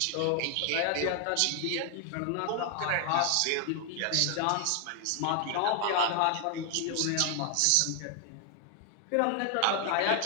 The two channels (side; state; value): both; different; correlation 0.00